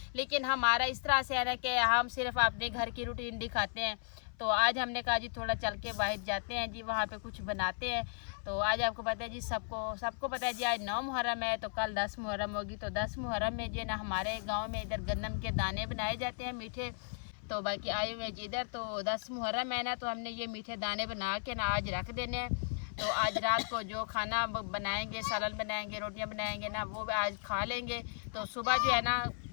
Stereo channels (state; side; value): silent; right; 54 dB below the other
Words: लेकिन हमारा इस तरह से है ना कि हम सिर्फ अपने घर की रूटीन दिखाते हैं। तो आज हमने कहा जी थोड़ा चल के बाहर जाते हैं जी, वहाँ पे कुछ बनाते हैं। तो आज आपको पता है जी, सबको पता है जी आज 9 मुहर्रम है, तो कल 10 मुहर्रम होगी। तो 10 मुहर्रम में जी ना हमारे गांव में इधर गन्नम के दाने बनाए जाते हैं मीठे। तो बाकी आए हुए जी इधर, तो 10 मुहर्रम है ना, तो हमने ये मीठे दाने बना के ना आज रख देने हैं। तो आज रात को जो खाना बनाएंगे, सालन बनाएंगे, रोटियाँ बनाएंगे ना, वो आज खा लेंगे। तो सुबह जो है ना